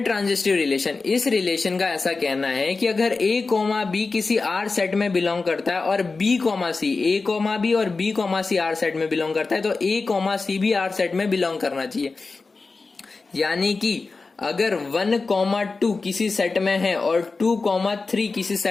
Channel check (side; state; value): right; quieter; 4.0 dB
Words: ट्रांजिस्टिव रिलेशन। इस रिलेशन का ऐसा कहना है कि अगर A, B किसी R सेट में बिलोंग करता है और B, C, A, B और B, C R सेट में बिलोंग करता है तो A, C भी R सेट में बिलोंग करना चाहिए। यानी कि अगर 1, 2 किसी सेट में है और 2, 3 किसी